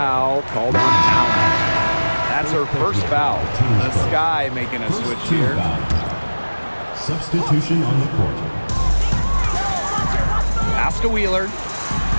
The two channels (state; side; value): inverted; both; correlation -1.00